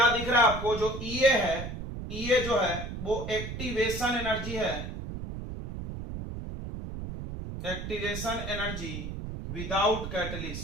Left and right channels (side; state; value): right; noise; rumble, 7 dB below the sound